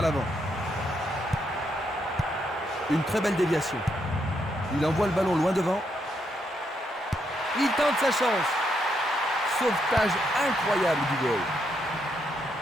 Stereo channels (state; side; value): normal; both; correlation 0.78